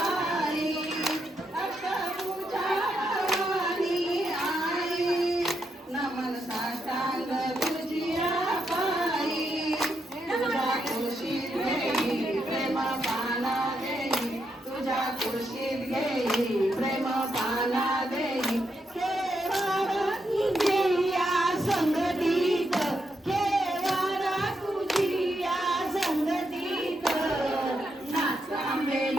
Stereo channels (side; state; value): both; normal; correlation 0.81